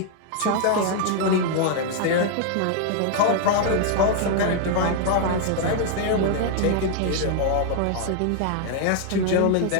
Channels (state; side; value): different; both; correlation 0.00